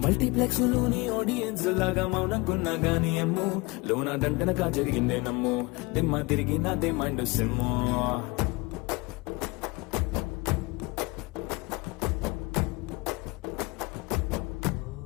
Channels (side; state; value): right; quieter; 24.8 dB